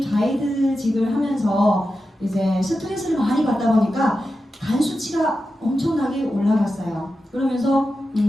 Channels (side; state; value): both; normal; correlation 0.91